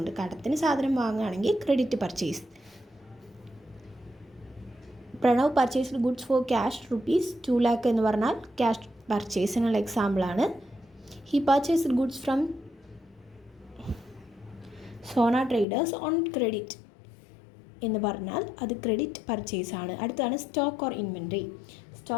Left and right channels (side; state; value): right; drops out; at 15.7 s